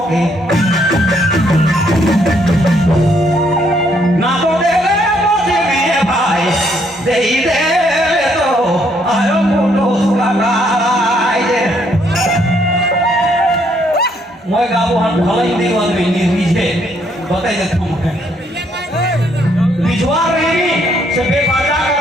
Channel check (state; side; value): normal; both; correlation 0.70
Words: Moi gabuhan khalai di wan ini rije batai de tum rijuar ini sebe baca